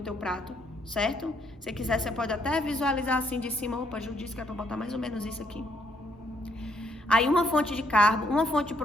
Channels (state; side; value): normal; both; correlation 0.71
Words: prato, certo? Se quiser, você pode até visualizar assim de cima. Opa, Ju disse que é pra botar mais ou menos isso aqui. Aí uma fonte de carbo, uma fonte de